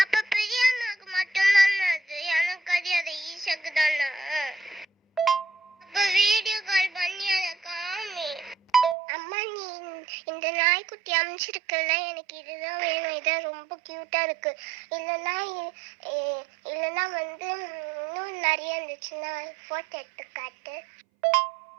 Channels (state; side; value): drops out; left; at 9.0 s